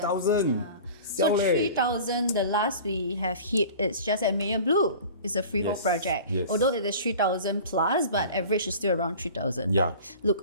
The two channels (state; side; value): inverted; both; correlation -0.40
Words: So 3,000, the last we have hit, it's just at Mayor Blue. It's a freehold project. Yes. Although it is 3,000 plus, but average is still around 3,000. Yeah.